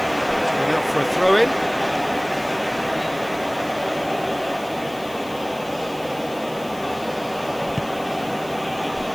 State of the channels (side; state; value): left; noise; hiss, 20 dB below the sound